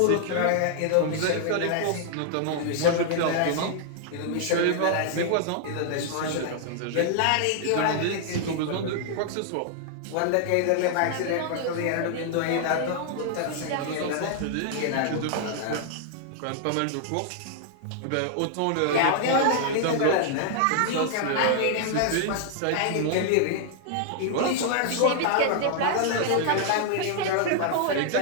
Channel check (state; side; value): different; both; correlation 0.00